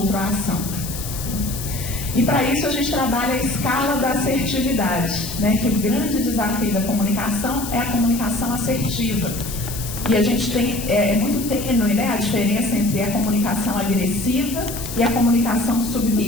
à ação. E para isso a gente trabalha a escala da assertividade, né, que o grande desafio da comunicação é a comunicação assertiva. E a gente tem, é muito tênue, né, a diferença entre a comunicação agressiva e a comunicação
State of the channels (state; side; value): noise; left; hiss, 9 dB below the sound